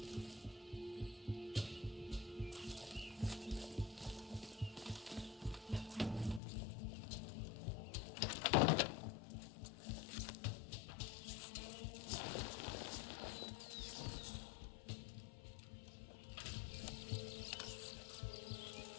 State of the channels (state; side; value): drops out; right; at 6.4 s